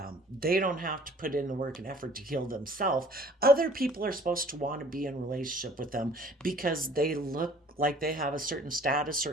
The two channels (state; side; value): normal; both; correlation 0.53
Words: They don't have to put in the work and effort to heal themselves. Other people are supposed to want to be in relationship with them because they look like they have a certain status